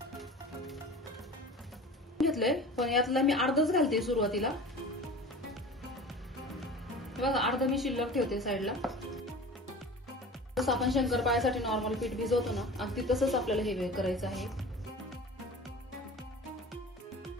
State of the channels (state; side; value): normal; both; correlation 0.38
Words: घेतलंय पण यातला मी अर्धच घालते सुरुवातीला। बघा अर्ध मी शिल्लक ठेवते साईडला। जसं आपण शंकरपाळ्यासाठी नॉर्मल पीठ भिजवतो ना अगदी तसंच आपल्याला हे करायचं आहे।